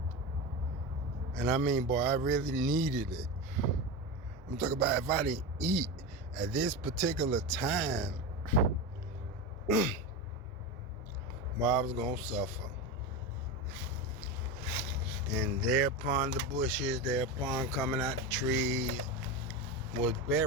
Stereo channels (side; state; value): both; normal; correlation 0.20